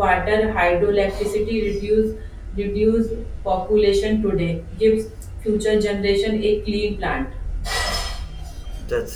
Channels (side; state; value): both; identical; correlation 1.00